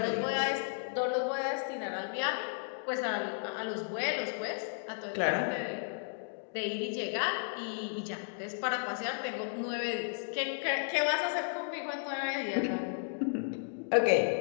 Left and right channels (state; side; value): silent; right; digital silence